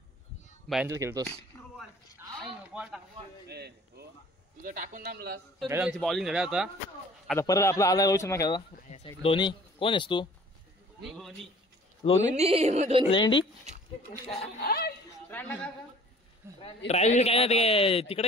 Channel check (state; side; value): normal; both; correlation 0.51